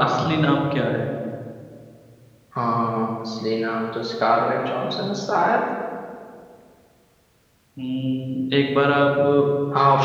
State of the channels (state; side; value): identical; both; correlation 1.00